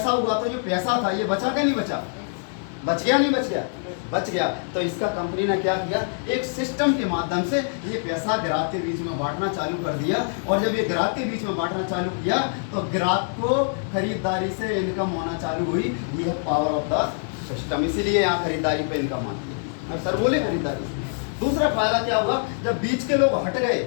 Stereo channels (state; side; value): silent; right; digital silence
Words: हुआ तो जो पैसा था ये बचा क्या नहीं बचा? बच गया नहीं बच गया? बच गया। तो इसका कंपनी ने क्या किया, एक सिस्टम के माध्यम से ये पैसा ग्राहक के बीच में बांटना चालू कर दिया। और जब ये ग्राहक के बीच में बांटना चालू किया तो ग्राहक को खरीदारी से इनकम होना चालू हुई। ये है पावर ऑफ द सिस्टम, इसीलिए यहाँ खरीदारी पे इनकम आती है। अब सर बोले खरीदारी से। दूसरा फायदा क्या हुआ, जब बीच के लोग हट गए